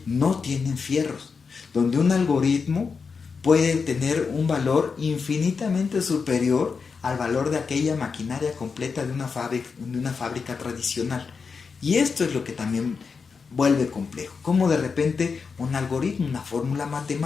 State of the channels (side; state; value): right; quieter; 5.3 dB